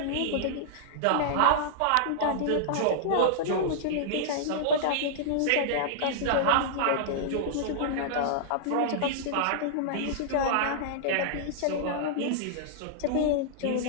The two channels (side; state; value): both; different; correlation -0.01